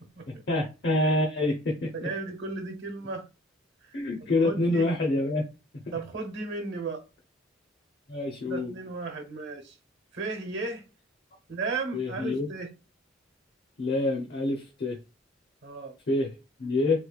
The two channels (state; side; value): normal; both; correlation 0.52